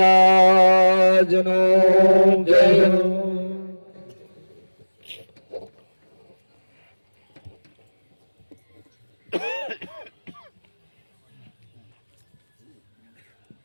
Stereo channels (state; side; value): inverted; both; correlation -1.00